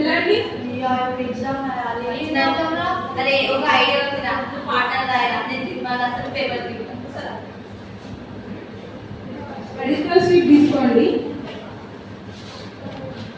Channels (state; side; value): identical; both; correlation 1.00